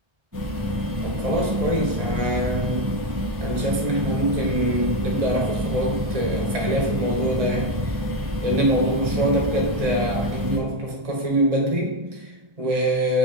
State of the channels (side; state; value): left; late; 1.7 ms